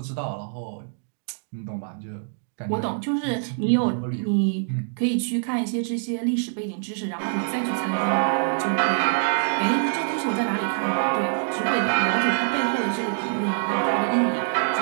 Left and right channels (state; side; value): silent; left; digital silence